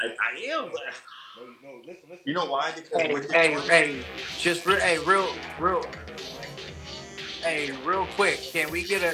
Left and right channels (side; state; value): both; identical; correlation 1.00